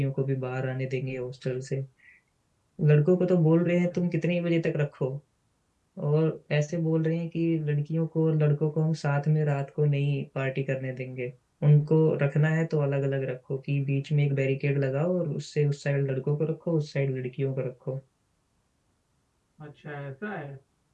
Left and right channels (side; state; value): both; identical; correlation 1.00